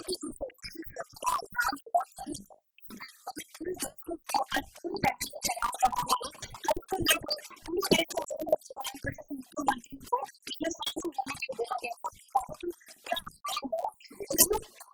कि जिस तरीके से स्वच्छता अभियान जो है पूरे देश में, मतलब पूरे देश के स्तर पर पूरी तरह से चलाया जा रहा है और इसको लेकर पूरे देश के अलग अलग जगहों पर जैसे मुख्यमंत्रियों को इसमें शामिल होने के लिए बोला गया था। आपको बता दूं कि यह अभियान है, इसमें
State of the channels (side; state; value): both; identical; correlation 1.00